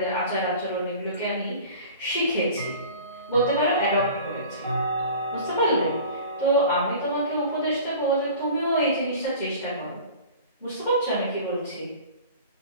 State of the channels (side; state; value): both; inverted; correlation -0.41